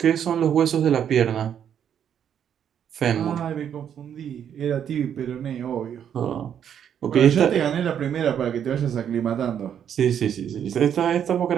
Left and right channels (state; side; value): quieter; left; 8.9 dB